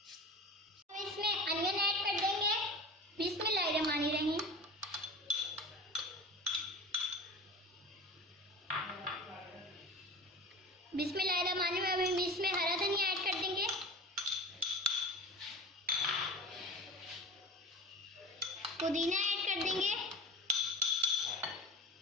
हम इसमें अनियन ऐड कर देंगे। बिस्मिल्लाहिर्रहमानिर्रहीम। बिस्मिल्लाहिर्रहमानिर्रहीम। इसमें हरा धनिया ऐड कर देंगे, पुदीना ऐड कर देंगे।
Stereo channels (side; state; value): both; normal; correlation 0.34